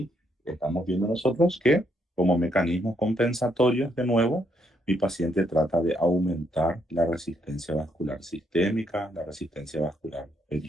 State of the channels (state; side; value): normal; both; correlation 0.74